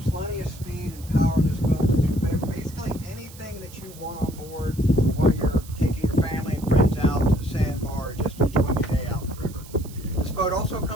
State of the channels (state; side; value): noise; right; hiss, 20 dB below the sound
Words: of speed and power in this boat to do basically anything that you want on board while you're taking your family and friends out to the sandbar, just enjoying a day out on the river. This boat also